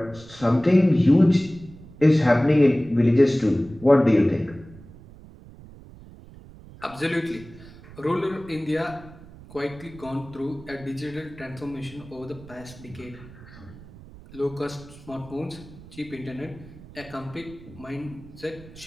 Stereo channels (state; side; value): noise; right; rumble, 19 dB below the sound